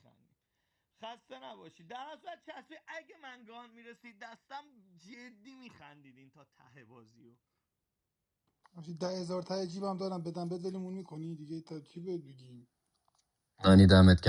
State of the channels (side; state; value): both; identical; correlation 1.00